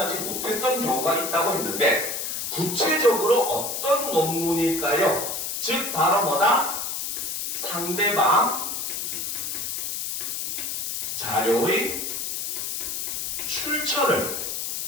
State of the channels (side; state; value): left; noise; hiss, 3 dB below the sound